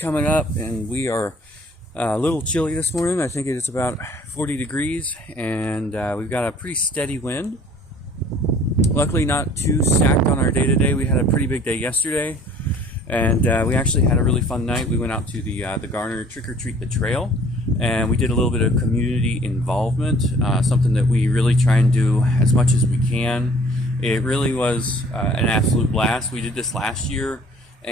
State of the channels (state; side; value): normal; both; correlation 0.54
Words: up, and we are a little chilly this morning. I think it's about 40 degrees, and we've got a pretty steady wind. Luckily, not too stacked on our day-to-day. We had a pretty big day yesterday, and we actually had a really fun night. We went out to the Garner Trick or Treat the Trail, and we did a little bit of community involvement, something that we really try and do as much as we can. It really was an absolute blast. We did this last year,